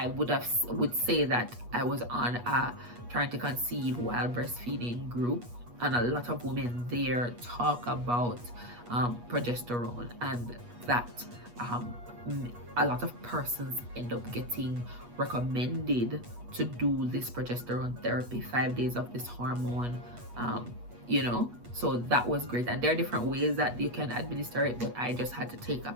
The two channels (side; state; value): left; late; 8.3 ms